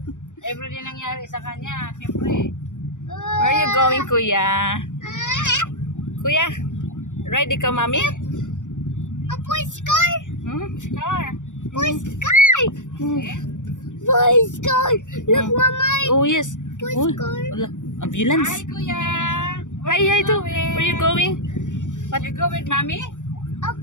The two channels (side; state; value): right; late; 0.86 ms